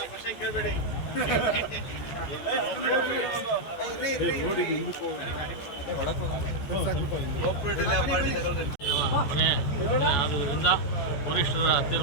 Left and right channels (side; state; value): right; late; 14 ms